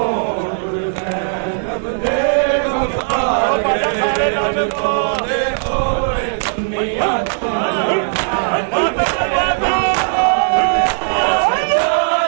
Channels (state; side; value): silent; left; digital silence